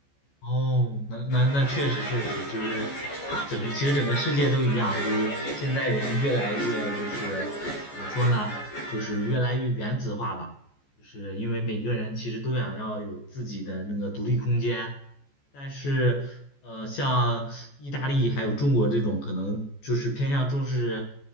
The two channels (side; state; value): right; late; 14 ms